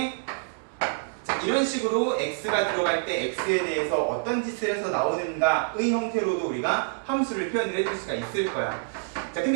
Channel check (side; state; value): left; silent; digital silence